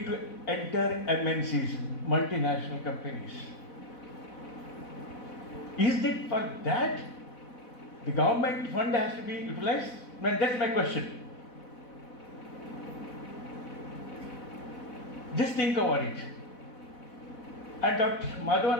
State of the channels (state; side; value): late; right; 4.1 ms